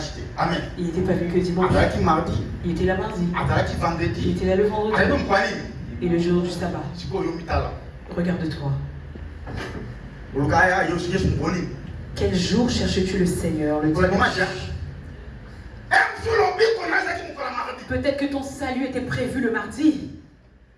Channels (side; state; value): both; identical; correlation 1.00